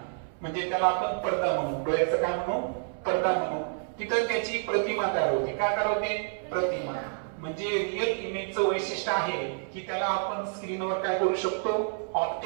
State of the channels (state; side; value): silent; left; 59 dB below the other